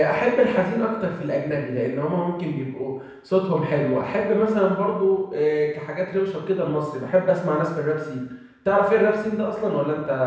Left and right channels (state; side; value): identical; both; correlation 1.00